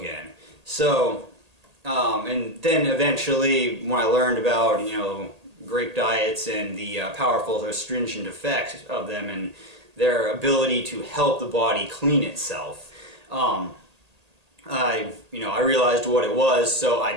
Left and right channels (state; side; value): late; left; 1.8 ms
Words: So, and then eventually, when I learned about, you know, grape diets and the powerful astringent effects of them and their ability to help the body clean itself, I realized what it was, so I